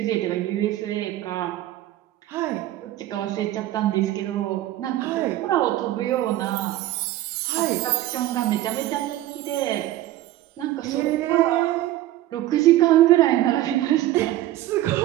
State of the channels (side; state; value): left; quieter; 14.7 dB